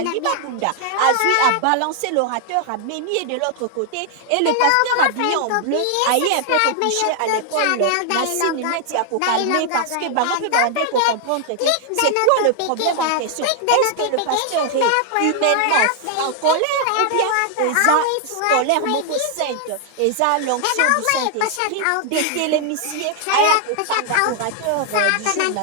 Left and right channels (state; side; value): different; both; correlation 0.00